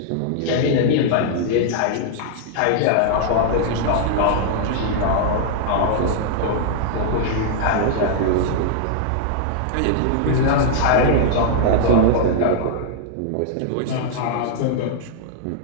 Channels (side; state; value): both; different; correlation -0.01